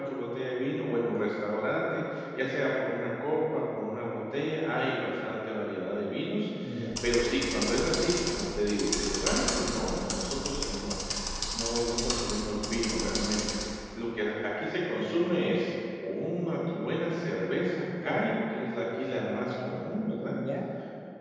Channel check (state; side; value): identical; both; correlation 1.00